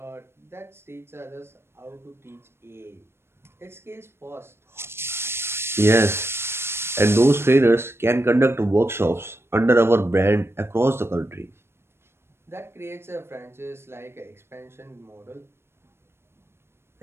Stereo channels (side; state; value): left; late; 0.12 ms